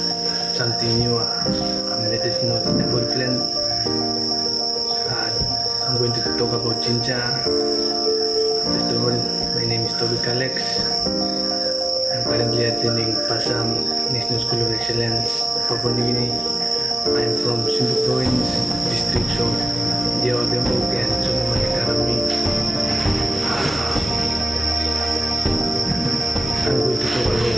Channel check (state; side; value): normal; both; correlation 0.94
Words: something new, medicinal herbal plant. I'm going to talk about ginger. First of all, my name is Toby Alex. I'm currently attending Passam National School of Excellence, Papua New Guinea. I'm from Simbu Province, districts of Jawa Tembok and Solomon Academy. I'm going to talk about